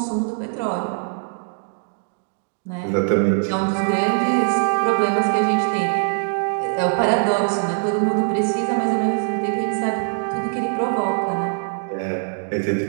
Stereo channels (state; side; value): silent; left; digital silence